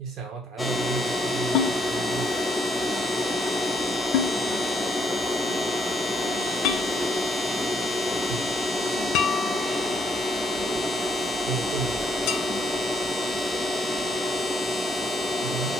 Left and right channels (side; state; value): both; normal; correlation 0.70